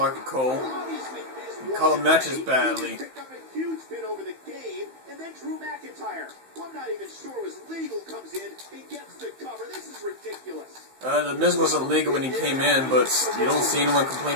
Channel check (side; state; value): left; late; 15 ms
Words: Cole. Obviously, Miz You call won him the matches game. badly. He picked up a huge pin over the game, and then Drew McIntyre, who I'm not even sure was legal, comes in and gets the cover. This is ridiculous. The Miz wasn't legal when he came in, but you don't see anyone